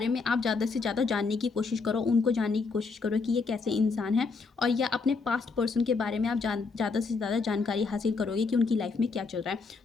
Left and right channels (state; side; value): quieter; right; 4.5 dB